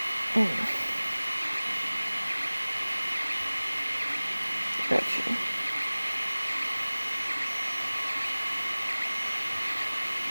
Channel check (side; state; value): both; inverted; correlation -1.00